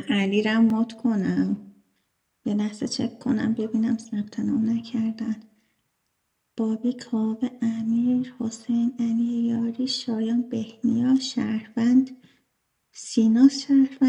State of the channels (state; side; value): identical; both; correlation 1.00